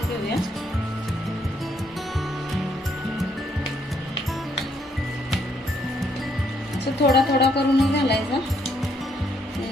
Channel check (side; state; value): both; normal; correlation 0.72